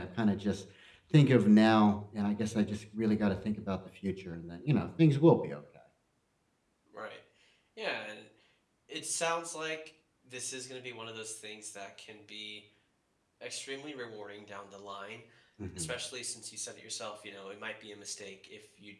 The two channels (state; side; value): identical; both; correlation 1.00